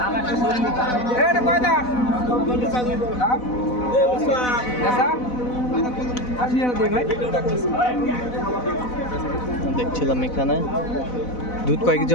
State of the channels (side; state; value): right; late; 4.0 ms